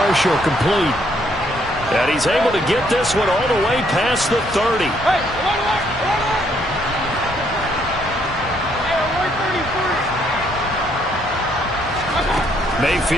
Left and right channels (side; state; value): both; normal; correlation 0.70